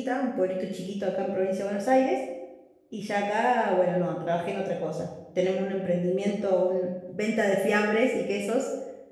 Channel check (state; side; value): identical; both; correlation 1.00